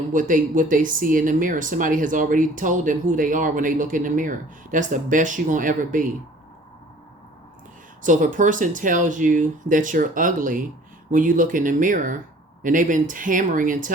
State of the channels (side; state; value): both; normal; correlation 0.51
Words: what they see in the mirror. Somebody has already told them who they are when they look in the mirror. That's the best you're gonna ever be. So if a person tells you that you're ugly when you look in the mirror, and they've been hammering and